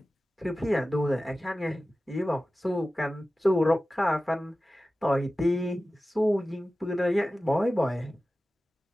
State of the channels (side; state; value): both; normal; correlation 0.95